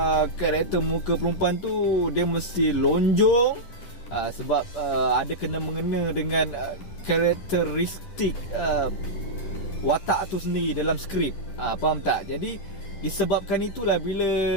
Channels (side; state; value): right; late; 10 ms